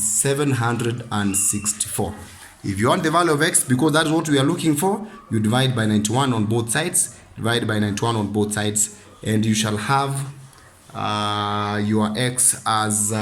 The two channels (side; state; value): both; identical; correlation 1.00